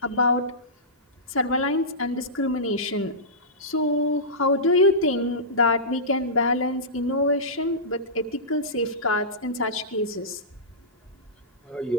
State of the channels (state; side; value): normal; both; correlation -0.18